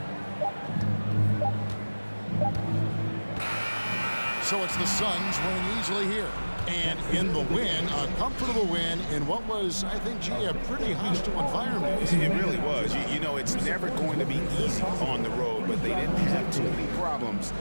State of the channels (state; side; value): inverted; both; correlation -1.00